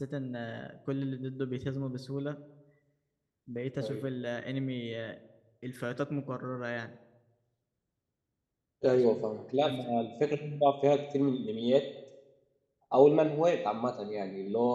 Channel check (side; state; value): both; identical; correlation 1.00